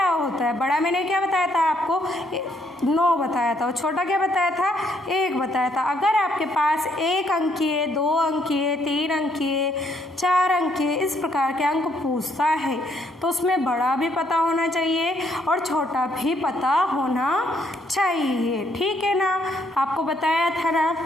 होता है। बड़ा मैंने क्या बताया था आपको? 9 बताया था। और छोटा क्या बताया था? 1 बताया था। अगर आपके पास 1 अंकीय, 2 अंकीय, 3 अंकीय, 4 अंकीय इस प्रकार के अंक पूछता है तो उसमें बड़ा भी पता होना चाहिए और छोटा भी पता होना चाहिए। ठीक है ना? आपको बताया था ना?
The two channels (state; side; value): normal; both; correlation 0.70